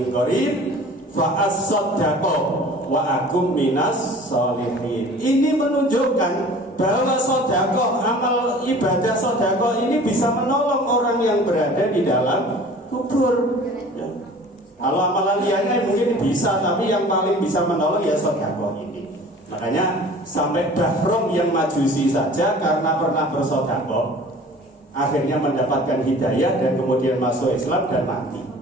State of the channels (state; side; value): normal; both; correlation 0.45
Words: qarib fa as-sodakoh wa akum minas sholihin. Ini menunjukkan bahwa sodakoh, amal ibadah sodakoh ini bisa menolong orang yang berada di dalam kubur. Ya. Kalau amalan lainnya mungkin bisa, tapi yang paling bisa menolong ya sodakoh ini. Makanya sampai Bahrom yang Majusi saja karena pernah bersodakoh akhirnya mendapatkan hidayah dan kemudian masuk Islam dan mati.